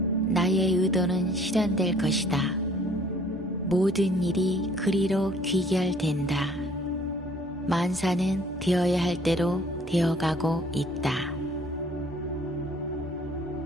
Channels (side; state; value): both; normal; correlation 0.57